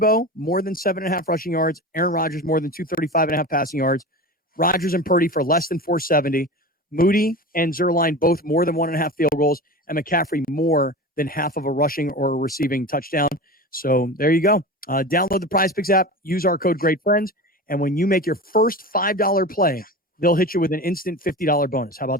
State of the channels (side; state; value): both; normal; correlation 0.30